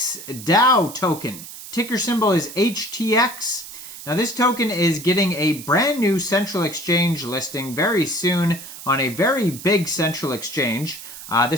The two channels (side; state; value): right; noise; hiss, 13 dB below the sound